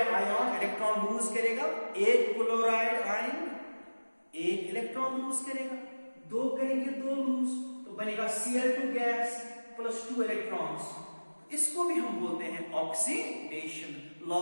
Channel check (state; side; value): inverted; both; correlation -1.00